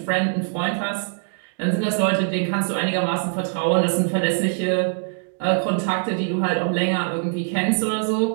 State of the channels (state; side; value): silent; left; digital silence